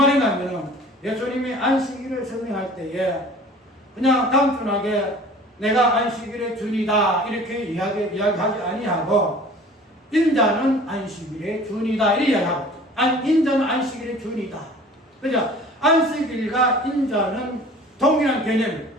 하면 예수님이 안식일을 설명할 때에 그냥 단순하게 내가 안식일의 주인이다 이렇게 이야기하지 아니하고 인자는 안식일의 주인이다 이렇게 이야기하고 인자는 안식일의 주인이다. 그죠? 안식일과 인자는 동일한 개념이에요.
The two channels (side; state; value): both; normal; correlation 0.46